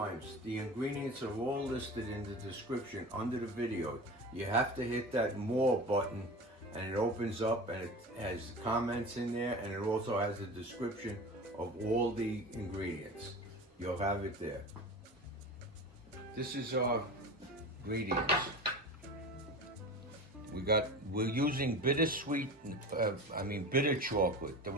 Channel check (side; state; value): both; normal; correlation 0.32